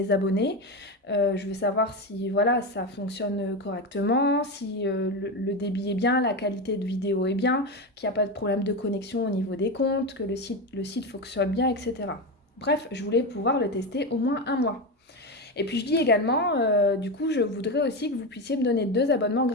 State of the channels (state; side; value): normal; both; correlation 0.16